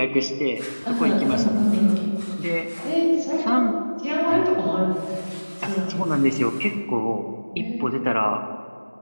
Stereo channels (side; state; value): both; inverted; correlation -1.00